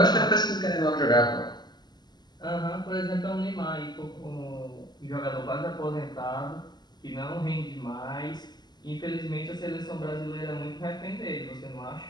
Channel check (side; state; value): right; late; 0.21 ms